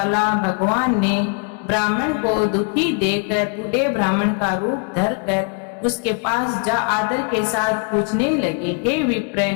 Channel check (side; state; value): right; quieter; 37.9 dB